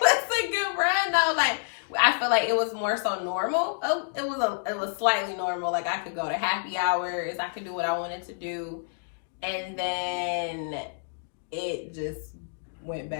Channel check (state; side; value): silent; right; digital silence